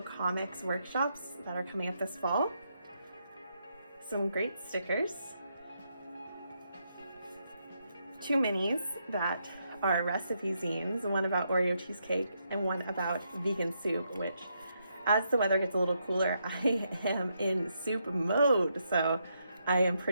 Comics workshops that are coming up this fall. Some great stickers. 2 minis that are recipe zines, one about Oreo cheesecake and one about vegan soup, which as the weather gets a little cooler, I am in soup mode, so I am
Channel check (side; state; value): both; inverted; correlation -0.79